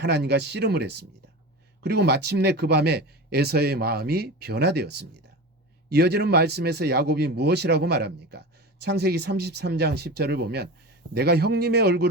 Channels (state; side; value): normal; both; correlation 0.29